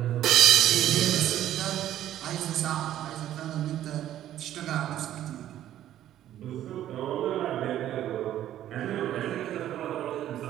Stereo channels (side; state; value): left; quieter; 12.2 dB